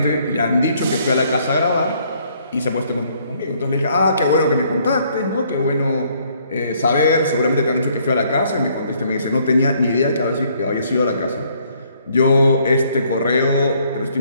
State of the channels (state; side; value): inverted; both; correlation -0.66